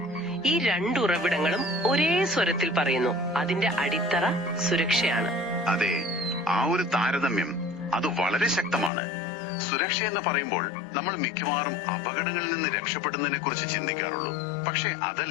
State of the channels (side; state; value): right; drops out; at 8.9 s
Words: ഈ രണ്ട് ഉറവിടങ്ങളും ഒരേ സ്വരത്തിൽ പറയുന്നു, അതിന്റെ അടിത്തറ സുരക്ഷയാണ്. അതെ, ആ ഒരു താരതമ്യം അത് വളരെ ശക്തമാണ്. സുരക്ഷ എന്ന് പറയുമ്പോൾ നമ്മൾ മിക്കവാറും അപകടങ്ങളിൽ നിന്ന് രക്ഷപ്പെടുന്നതിനെ കുറിച്ച് ചിന്തിക്കാറുള്ളൂ. പക്ഷെ